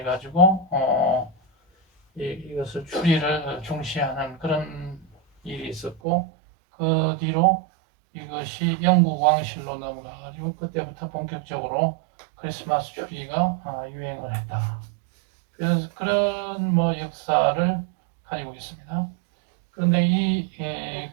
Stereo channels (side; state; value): left; drops out; at 6.0 s